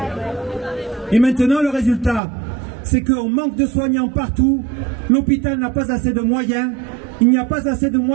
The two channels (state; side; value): drops out; left; at 2.2 s